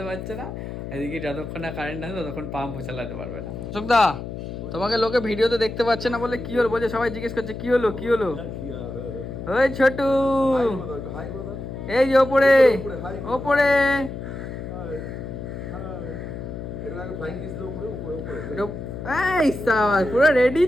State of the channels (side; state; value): left; noise; hum, 8 dB below the sound